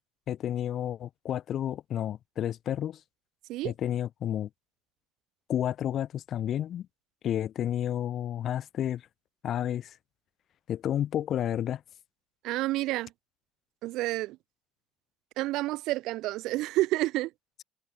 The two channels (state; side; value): normal; both; correlation 0.45